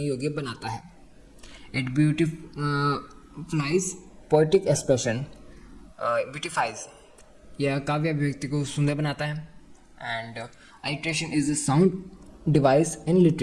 योग्य बनाता है. It beautifies poetic expression, beautifies, यह काव्य अभिव्यक्ति को सुंदर बनाता है. And alliteration is a sound device in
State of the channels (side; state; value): both; identical; correlation 1.00